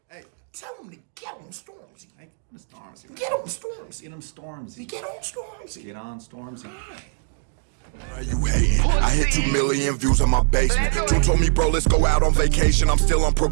Hey, tell him to get on Stormzy. Hey, get on Stormzy. Get on Stormzy. Get on Stormzy. Get on Stormzy. Get on Stormzy. Why you hating? I hit 2 million views on my basement. Drew told me, bro, let's go out on vacation. I'm still on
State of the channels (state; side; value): silent; left; digital silence